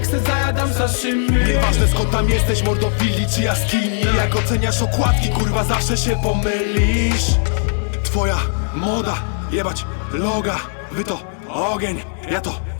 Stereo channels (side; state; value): right; silent; digital silence